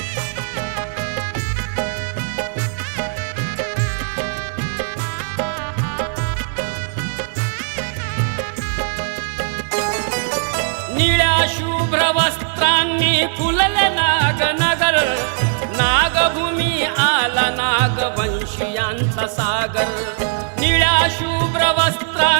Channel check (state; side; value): silent; left; 60 dB below the other